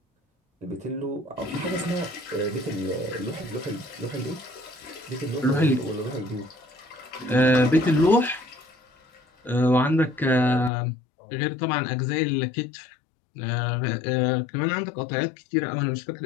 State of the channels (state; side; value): drops out; right; at 10.7 s